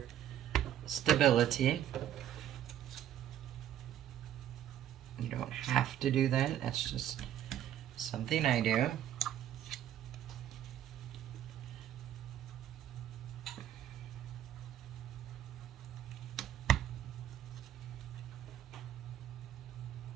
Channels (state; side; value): quieter; left; 11.2 dB